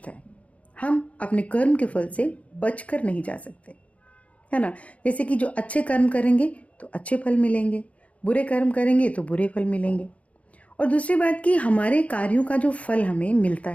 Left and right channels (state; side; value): late; right; 0.065 ms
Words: है। हम अपने कर्म के फल से बचकर नहीं जा सकते, है ना। जैसे कि जो अच्छे कर्म करेंगे तो अच्छे फल मिलेंगे, बुरे कर्म करेंगे तो बुरे फल मिलेंगे। और दूसरी बात कि हमारे कार्यों का जो फल हमें मिलता